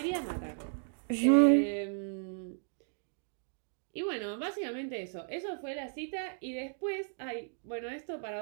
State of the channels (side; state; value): left; silent; digital silence